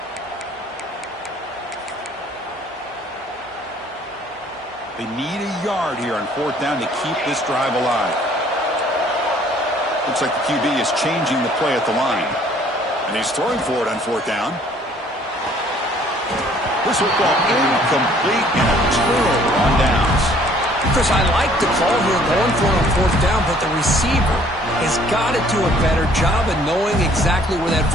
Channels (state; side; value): normal; both; correlation 0.58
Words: They need a yard here on 4th down to keep this drive alive. Looks like the QB is changing the play at the line. And he's throwing for it on 4th down. This football incomplete and a turnover on downs. Chris, I like the call here going for it on 4th down, but the receiver has got to do a better job of knowing exactly where that